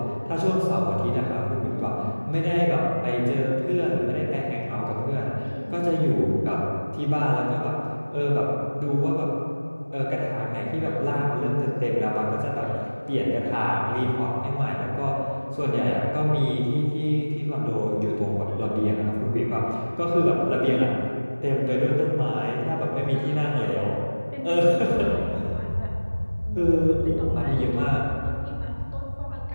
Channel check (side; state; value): both; inverted; correlation -1.00